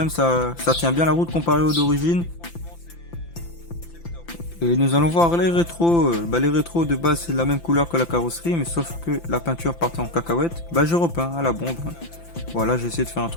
Ça tient bien la route comparé aux d'origine. Et nous allons voir les rétros. Les rétros de base c'est la même couleur que la carrosserie, mais sauf que la peinture partait en cacahuète. Je repeins à la bombe. Voilà, j'ai essayé de faire un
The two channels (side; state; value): right; late; 5.9 ms